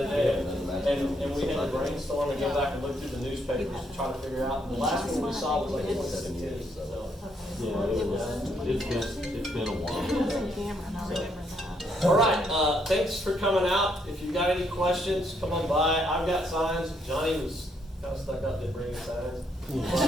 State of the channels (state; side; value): normal; both; correlation 0.73